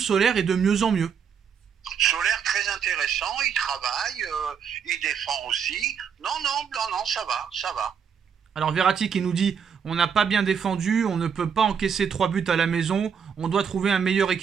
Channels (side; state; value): left; quieter; 7.1 dB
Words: est de mieux en mieux. Solaire très intéressant, il travaille, il défend aussi. Non, ça va. Alors Verratti qui nous dit on n'a pas bien défendu, on ne peut pas encaisser 3 buts à la maison, on doit trouver un meilleur